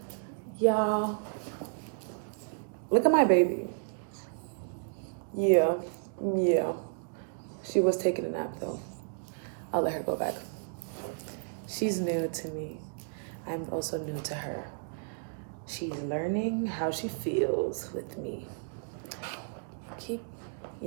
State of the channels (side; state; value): left; silent; digital silence